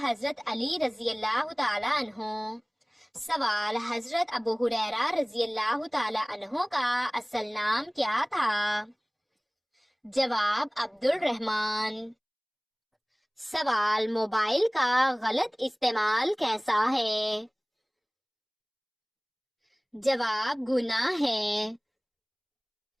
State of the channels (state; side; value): identical; both; correlation 1.00